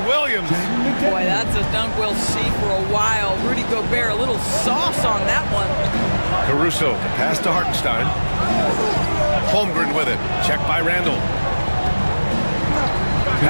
Williams. Boy, that's a dunk we'll see for a while. Rudy Gobert, a little sauce on that one. Caruso, pass to Hartenstein. Holmgren with it. Check by Randall.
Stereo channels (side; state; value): both; inverted; correlation -1.00